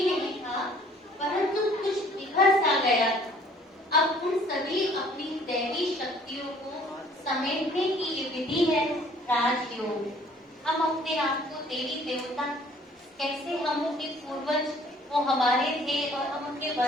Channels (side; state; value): both; normal; correlation 0.57